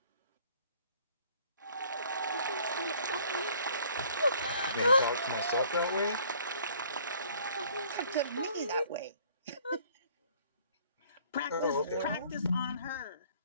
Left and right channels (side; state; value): both; inverted; correlation -0.58